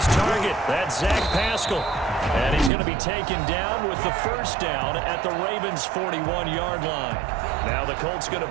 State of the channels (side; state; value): left; drops out; at 2.7 s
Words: target. That's Zach Pascal. And he's going to be taken down with the first down at the Ravens' 41-yard line. Now the Colts going